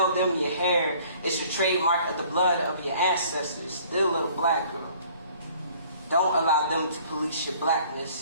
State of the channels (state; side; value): inverted; both; correlation -0.55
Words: them your hair is your trademark of the blood of your ancestors. Dear little black girl, don't allow them to police your